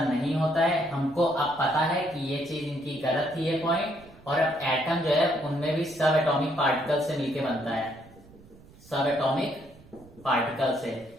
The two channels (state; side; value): noise; right; rumble, 23 dB below the sound